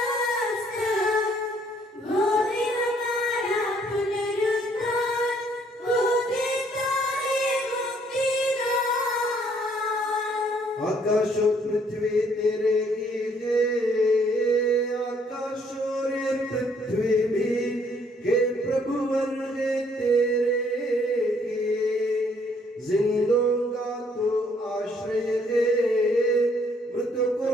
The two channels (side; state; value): both; normal; correlation 0.65